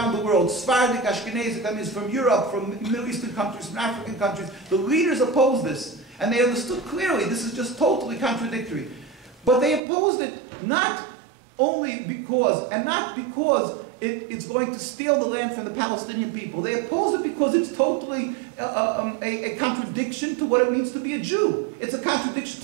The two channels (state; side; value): drops out; left; at 9.8 s